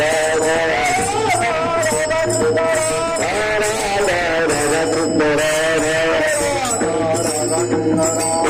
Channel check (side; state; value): both; identical; correlation 1.00